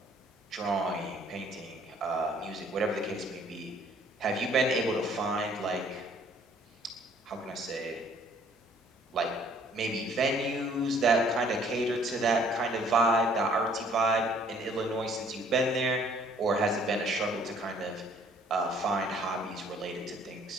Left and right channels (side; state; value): both; normal; correlation 0.59